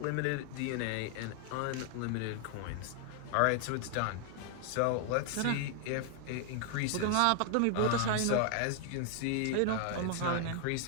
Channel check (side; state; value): both; different; correlation 0.00